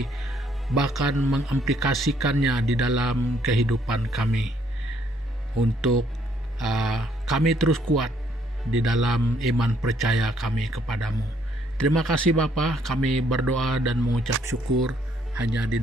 bahkan mengimplikasikannya di dalam kehidupan kami untuk kami terus kuat di dalam iman percaya kami kepadamu. Terima kasih Bapa, kami berdoa dan mengucap syukur hanya di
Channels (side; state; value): both; normal; correlation 0.68